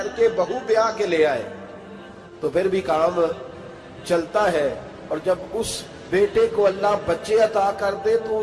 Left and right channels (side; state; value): both; identical; correlation 1.00